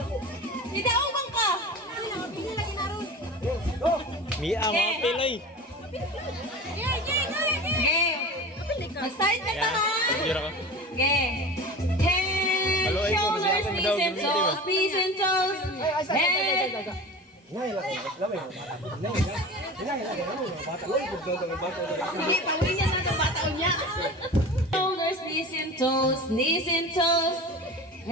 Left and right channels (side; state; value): both; normal; correlation 0.34